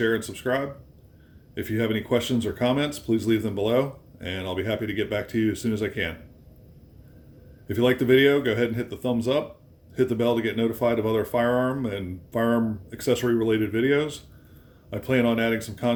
and subscribe. If you have any questions or comments, please leave them below, and I'll be happy to get back to you as soon as I can. If you like the video, go ahead and hit the thumbs up, hit the bell to get notified of other firearm and firearm accessory related videos. I plan on adding some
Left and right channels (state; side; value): identical; both; correlation 1.00